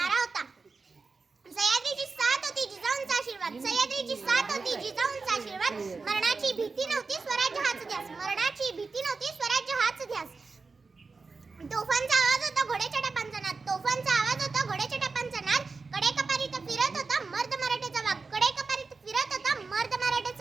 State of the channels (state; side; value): quieter; left; 4.3 dB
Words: होता. सह्याद्रीची साथ होती जिजाऊंचा आशीर्वाद, सह्याद्रीची साथ होती जिजाऊंचा आशीर्वाद, मरणाची भीती नव्हती स्वराज्य हाच ध्यास, मरणाची भीती नव्हती स्वराज्य हाच ध्यास. तोफांचा आवाज होता घोड्याच्या टापांचा नाद, तोफांचा आवाज होता घोड्याच्या टापांचा नाद, कडेकपारीत फिरत होता मर्द मराठ्याचा वाघ, कडेकपारीत फिरत होता मर्द